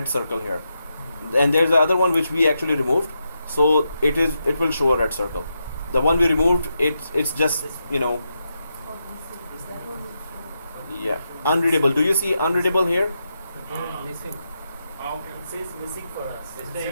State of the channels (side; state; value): both; inverted; correlation -0.86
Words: circle here. And there's the other one which we actually removed. So it will show a red circle. The one we removed, it's just yeah, unreadable. Do you see unreadable here? Missing. Okay. It says missing for us. It's It